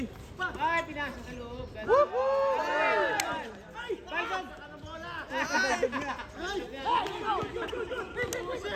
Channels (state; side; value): identical; both; correlation 1.00